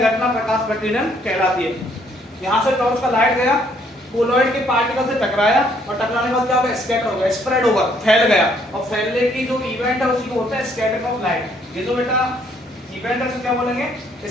घटना प्रकाश प्रकीर्णन कहलाती है। यहाँ से टॉर्च का लाइट गया, कोलॉइड के पार्टिकल से टकराया और टकराने के बाद क्या होगा, स्कैटर होगा, स्प्रेड होगा, फैल गया, और फैलने की जो इवेंट है उसी को होता है स्कैटरिंग ऑफ लाइट। ये जो बेटा इवेंट है उसे क्या बोलेंगे,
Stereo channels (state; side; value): normal; both; correlation 0.67